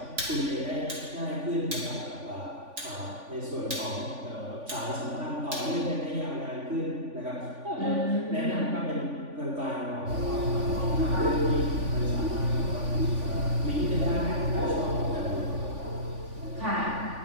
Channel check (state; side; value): late; left; 3.5 ms